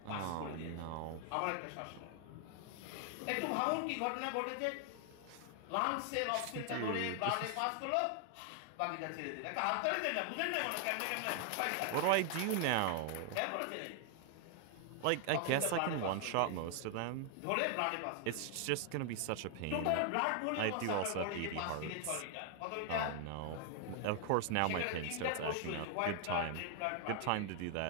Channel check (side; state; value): both; different; correlation 0.00